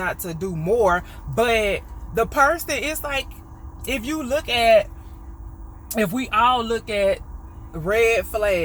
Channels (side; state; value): both; identical; correlation 1.00